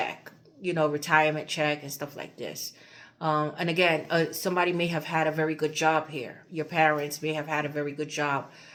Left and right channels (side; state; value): both; identical; correlation 1.00